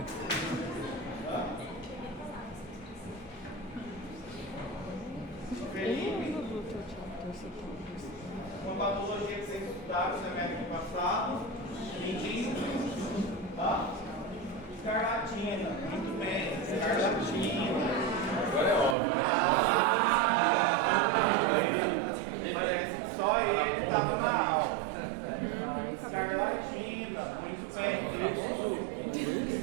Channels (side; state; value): left; drops out; at 18.9 s